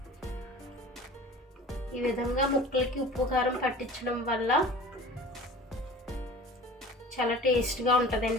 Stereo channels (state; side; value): normal; both; correlation 0.41